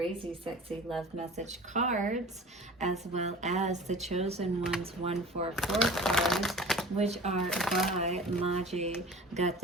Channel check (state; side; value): normal; both; correlation 0.41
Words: Sexy Love Message cards, as well as the Chosen Ones 144 cards, which are by Maji Got